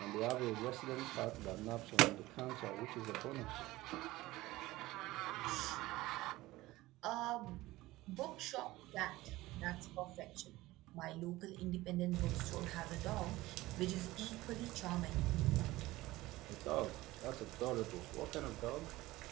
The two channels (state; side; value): quieter; left; 18.3 dB